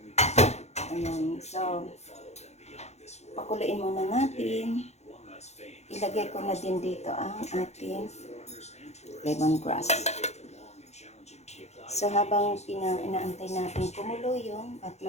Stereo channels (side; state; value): right; late; 0.32 ms